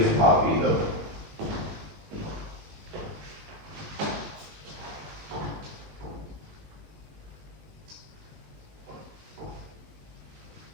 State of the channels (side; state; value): left; late; 20 ms